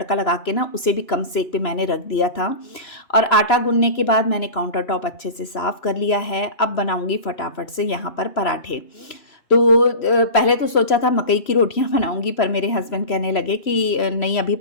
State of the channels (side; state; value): right; late; 3.0 ms